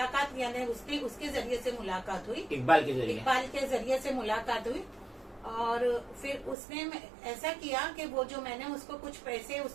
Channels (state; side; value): drops out; left; at 6.6 s